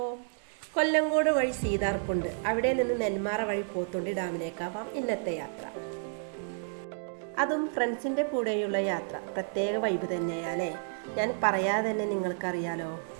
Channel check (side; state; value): left; silent; digital silence